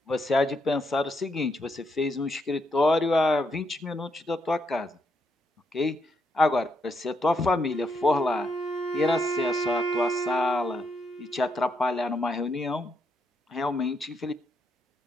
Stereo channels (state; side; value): normal; both; correlation 0.78